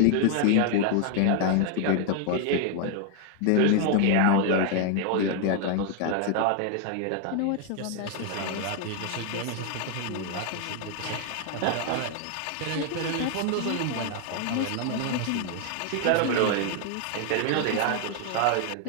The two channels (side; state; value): both; different; correlation 0.00